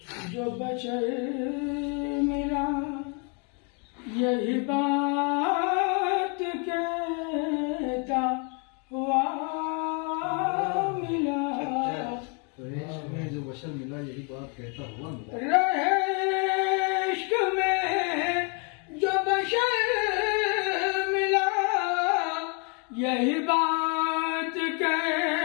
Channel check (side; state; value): right; quieter; 36.2 dB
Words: जो बशर मिला यही बात कहता हुआ मिला। में जो बशर मिला यही बात कहता हुआ मिला। रहे इश्क में जो बशर मिला यही बात